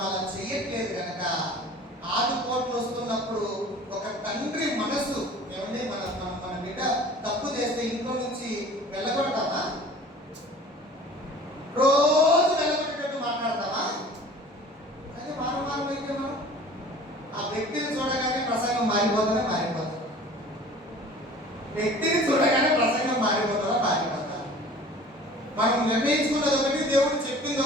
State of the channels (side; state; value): both; normal; correlation 0.45